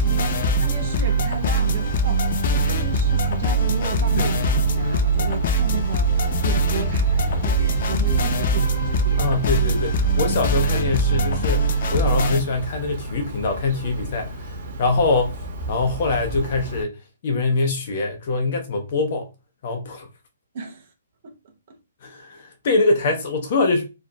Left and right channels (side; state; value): both; inverted; correlation -0.39